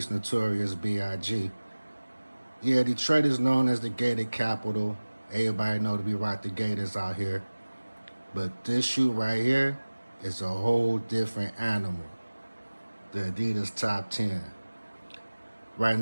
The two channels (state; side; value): inverted; both; correlation -1.00